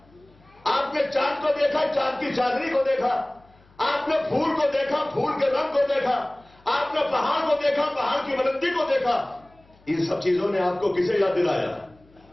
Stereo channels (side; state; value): left; noise; hum, 30 dB below the sound